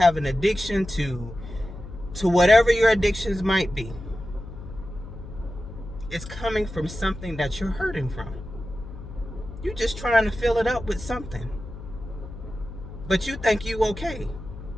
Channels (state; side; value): noise; left; hum, 13 dB below the sound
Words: an addiction to to whatever your addictions might be, it's coming from something that you're hurting from. You're just trying to fill it up with something. But you think you okay.